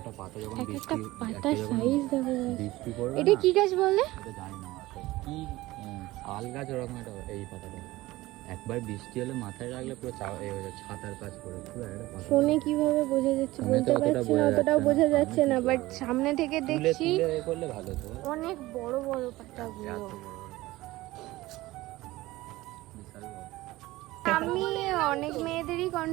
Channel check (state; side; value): quieter; left; 18.4 dB